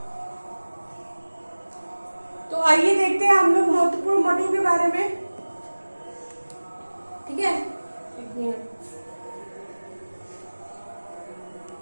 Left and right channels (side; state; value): both; inverted; correlation -1.00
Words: तो आइए देखते हैं हम लोग महत्वपूर्ण मठों के बारे में। ठीक है, एक मिनट।